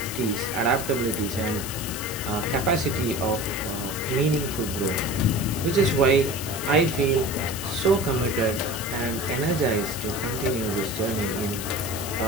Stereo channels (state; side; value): noise; left; hiss, 8 dB below the sound